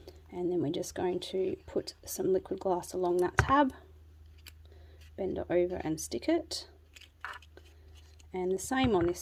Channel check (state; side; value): identical; both; correlation 1.00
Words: And then we're just going to put some liquid glass along that tab, bend it over and stick it, and the same on this